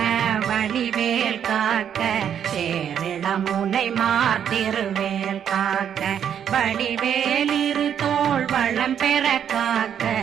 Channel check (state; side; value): quieter; left; 8.8 dB